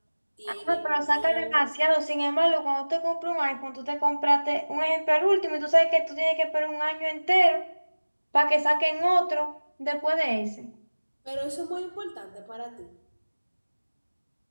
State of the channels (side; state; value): both; inverted; correlation -1.00